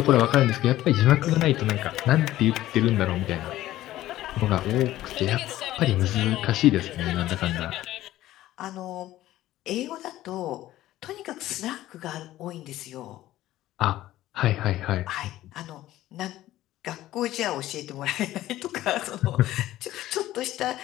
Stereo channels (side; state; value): right; quieter; 14.8 dB